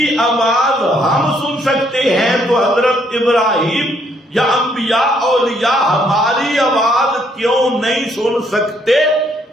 آواز ہم سن سکتے ہیں، تو حضرت ابراہیم یا انبیاء اولیاء ہماری آواز کیوں نہیں سن سکتے؟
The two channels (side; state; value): both; normal; correlation 0.69